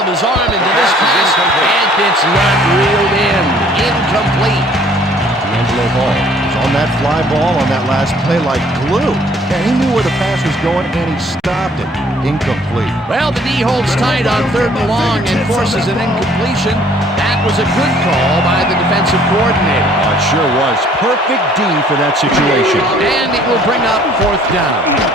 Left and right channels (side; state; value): both; normal; correlation 0.58